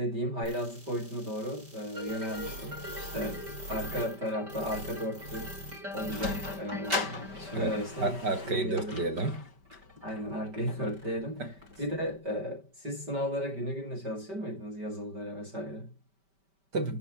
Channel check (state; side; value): late; left; 5.2 ms